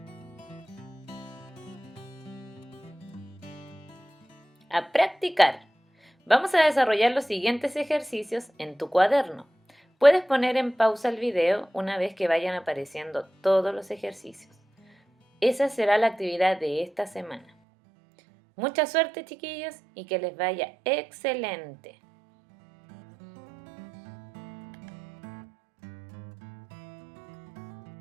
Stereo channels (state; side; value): drops out; left; at 17.4 s